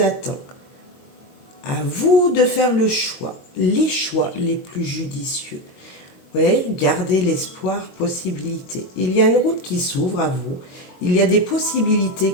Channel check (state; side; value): late; right; 22 ms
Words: À vous de faire les choix les plus judicieux. Oui, gardez l'espoir, possibilité. Il y a une route qui s'ouvre à vous. Il y a des possibilités